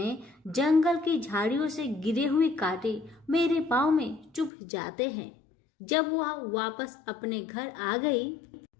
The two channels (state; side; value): drops out; right; at 4.5 s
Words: जंगल की झाड़ियों से गिरे हुए कांटे मेरे पाँव में चुभ जाते हैं। जब वह वापस अपने घर आ गई